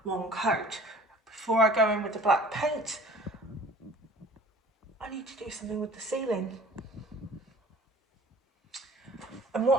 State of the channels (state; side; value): normal; both; correlation 0.48